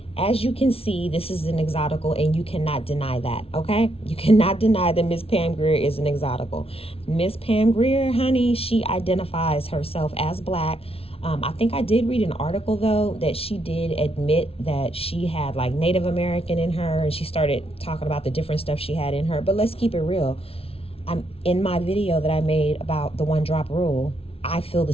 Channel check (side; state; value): right; late; 0.28 ms